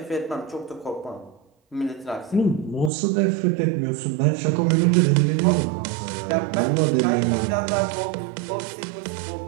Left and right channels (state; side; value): drops out; left; at 2.9 s